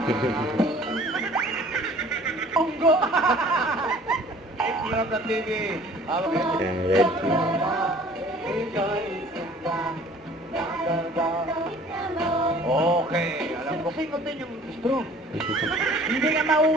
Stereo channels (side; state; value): both; normal; correlation 0.51